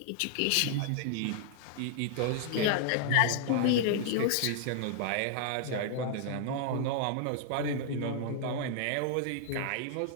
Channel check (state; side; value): different; both; correlation 0.00